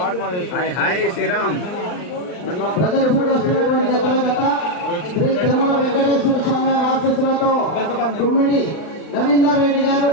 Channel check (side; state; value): right; late; 39 ms